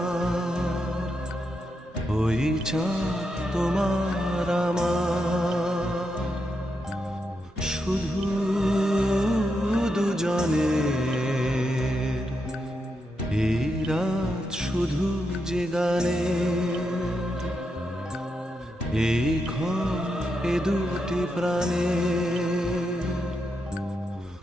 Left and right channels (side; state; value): both; normal; correlation 0.84